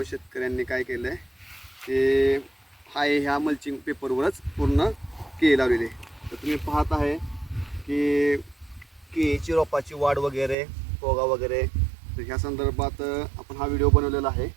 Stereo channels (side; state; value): left; drops out; at 10.6 s